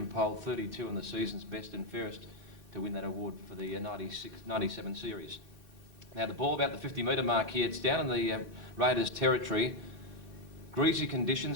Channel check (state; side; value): late; right; 2.6 ms